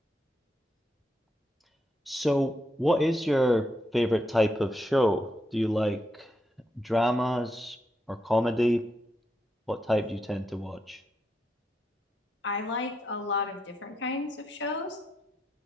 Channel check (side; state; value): both; normal; correlation 0.82